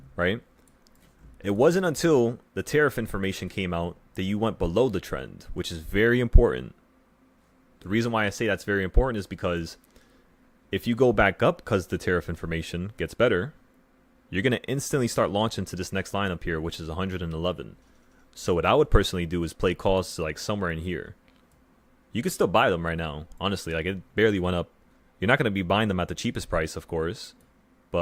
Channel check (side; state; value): both; identical; correlation 1.00